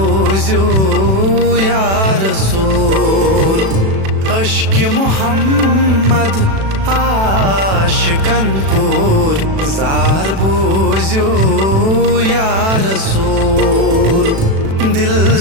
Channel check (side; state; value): left; late; 36 ms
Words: या रसूल। अश्क मोहम्मद आशिकन पुर जार बोझो या रसूल। दिल